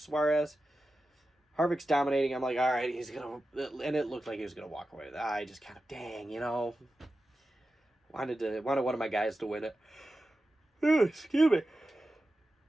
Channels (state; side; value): normal; both; correlation 0.92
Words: Harvick's dominating. I'm like, all right, he's going to... And it looked like he was going to walk away. I just kind of, dang, you know... Wanted one of my guys to win it. Excuse me.